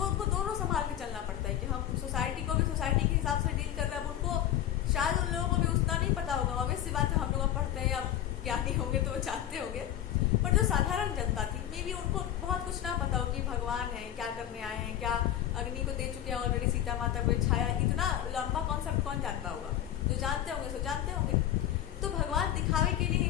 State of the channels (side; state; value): right; quieter; 11.4 dB